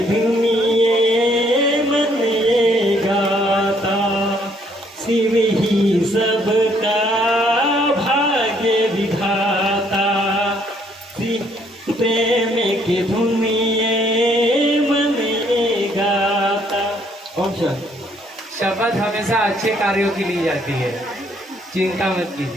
धुन ये मन ये गाता, शिव ही सबका भाग्य विधाता, प्रेम की धुन ये मन ये गाता। ओम शांति। शपथ हमेशा अच्छे कार्यों की ली जाती है, चिंता मत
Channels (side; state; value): both; normal; correlation 0.66